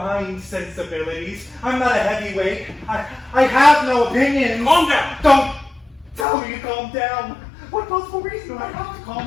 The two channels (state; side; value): drops out; right; at 6.2 s